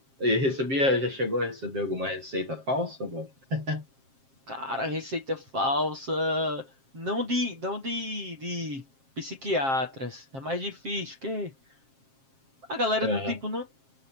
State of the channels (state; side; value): late; left; 7.5 ms